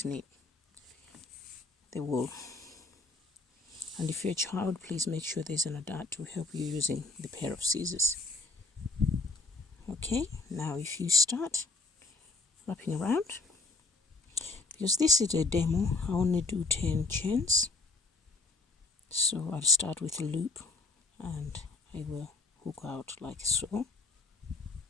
the wool. And if you're a child, please make sure there's an adult to help you using the pair of scissors. Okay, now if you start wrapping around, because this is a demo, I only do 10 chains. So I'll start with a loop and I will hook out like so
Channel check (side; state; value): right; quieter; 3.5 dB